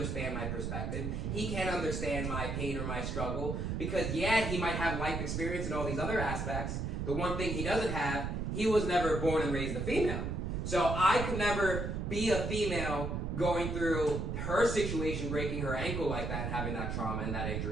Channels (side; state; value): right; noise; rumble, 2 dB below the sound